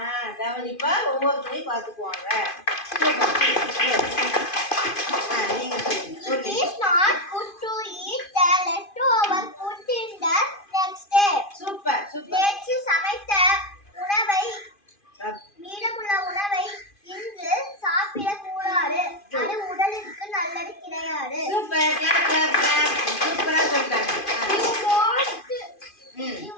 கவனிப்பா ஒவ்வொருத்தரையும் பார்த்துக்குவாங்க. நீங்க சொல்லுங்க. It is not good to eat the leftover food in the next day. Super super. நேற்று சமைத்த உணவை மீதமுள்ள உணவை இன்று சாப்பிடக்கூடாது. அது உடலுக்கு நல்லது கிடையாது. சூப்பர். Clap clap clap. சூப்பரா சொல்றாங்க. You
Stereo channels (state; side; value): late; right; 2.5 ms